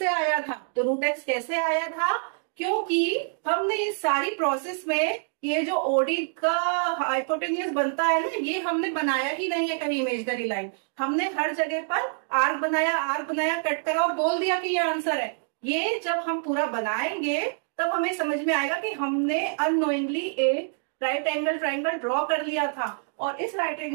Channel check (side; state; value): left; silent; 61 dB below the other